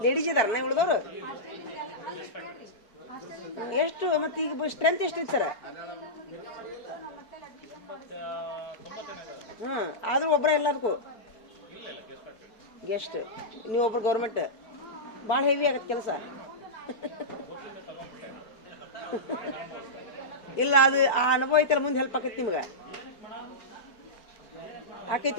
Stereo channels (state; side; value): late; right; 4.5 ms